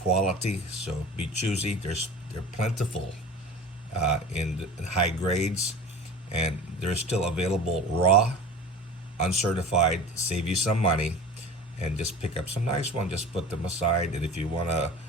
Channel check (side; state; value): both; normal; correlation 0.37